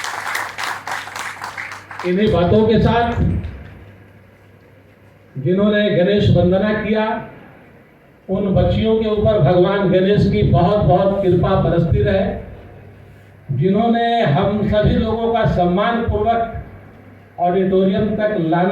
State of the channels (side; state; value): both; identical; correlation 1.00